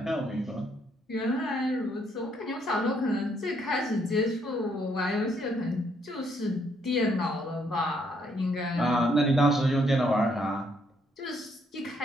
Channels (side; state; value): both; normal; correlation 0.71